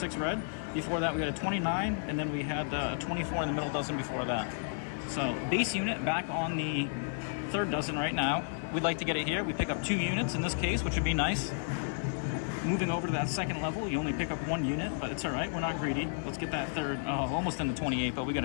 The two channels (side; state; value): right; silent; 56 dB below the other